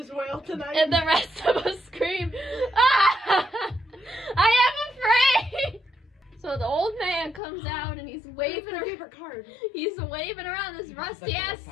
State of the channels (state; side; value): drops out; right; at 7.4 s